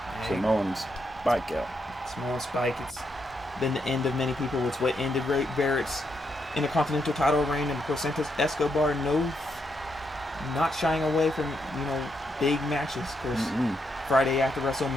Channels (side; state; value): both; normal; correlation 0.80